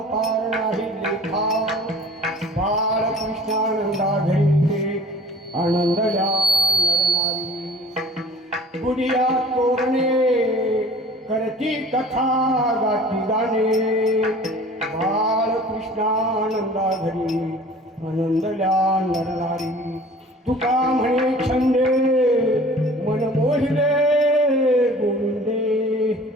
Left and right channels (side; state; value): both; normal; correlation 0.46